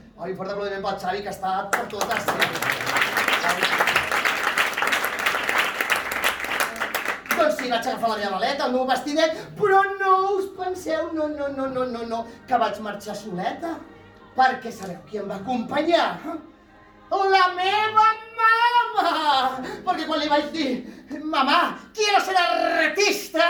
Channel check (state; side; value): identical; both; correlation 1.00